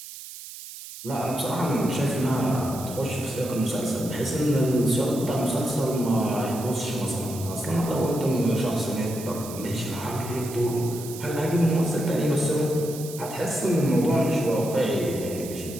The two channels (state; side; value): noise; right; hiss, 13 dB below the sound